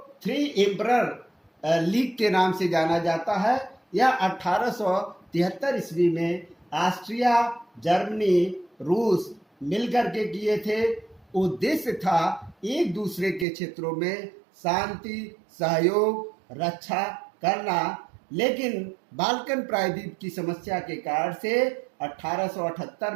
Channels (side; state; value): left; drops out; at 13.5 s